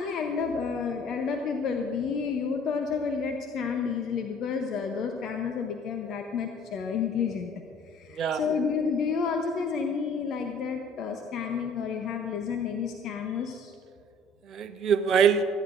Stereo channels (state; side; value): normal; both; correlation 0.52